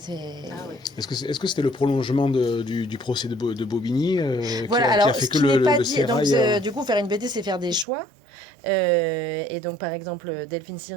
Est-ce que c'était le prolongement du procès de Bobigny qui a fait que le sérail... Donc, du coup, faire une BD, c'est faire des choix. Et donc, par exemple, Delphine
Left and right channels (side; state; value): left; drops out; at 7.9 s